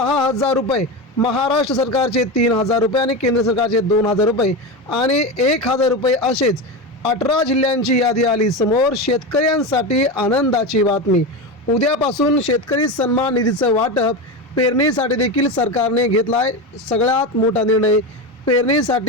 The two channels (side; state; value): both; normal; correlation 0.19